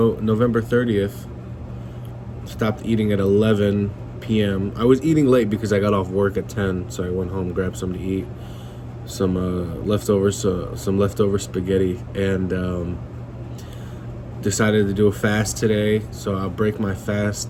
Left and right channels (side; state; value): both; identical; correlation 1.00